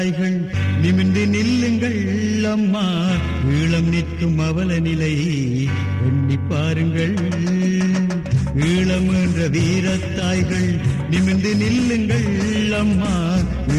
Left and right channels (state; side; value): identical; both; correlation 1.00